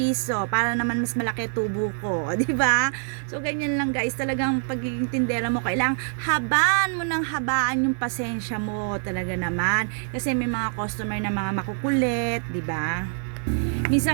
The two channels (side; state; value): left; silent; 62 dB below the other